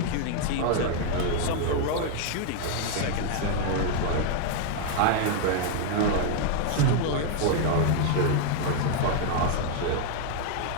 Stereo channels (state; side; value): different; both; correlation 0.00